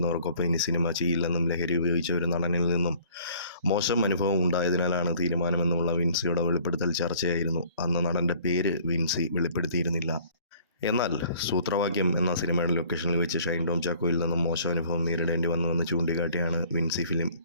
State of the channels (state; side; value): inverted; both; correlation -0.55